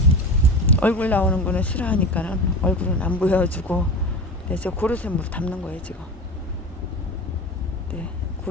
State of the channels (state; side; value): normal; both; correlation 0.28